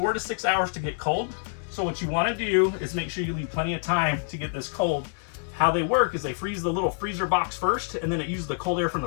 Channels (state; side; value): silent; right; 60 dB below the other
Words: to 6 hours to get cold. So what you wanna do is make sure you leave plenty of time to get this cold. How they work is they freeze the little freezer box first, and then it uses the cold air from